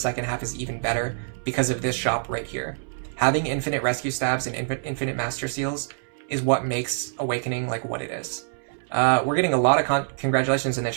half is even better because of this shop right here. Having infinite rescue staves and infinite Master Seals is what makes Awakening like what it is. We're getting a lot of congratulations in the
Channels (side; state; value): left; silent; 61 dB below the other